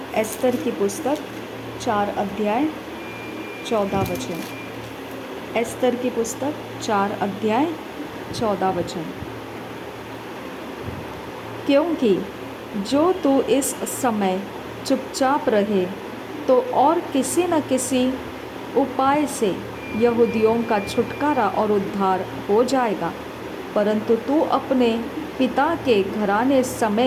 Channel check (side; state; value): both; identical; correlation 1.00